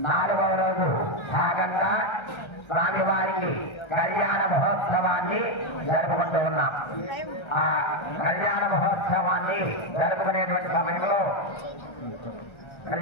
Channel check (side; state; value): right; late; 1.3 ms